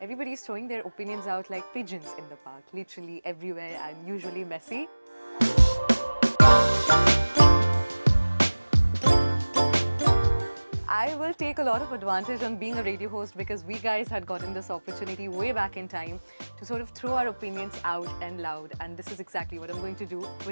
throwing their opinions out like pigeons in the park, literally everywhere and usually messy. I will take a lot of advantage on being a radio host because we guys had gotten this opportunity way back in time to sort of throw our opinions out and loud, and this is exactly what I'm going to do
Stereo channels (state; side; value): inverted; both; correlation -1.00